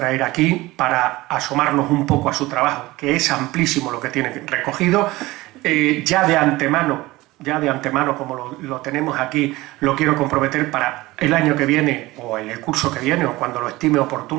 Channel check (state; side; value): quieter; left; 19.5 dB